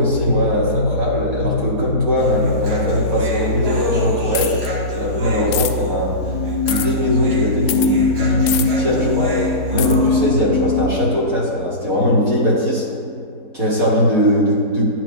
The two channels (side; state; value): left; late; 3.7 ms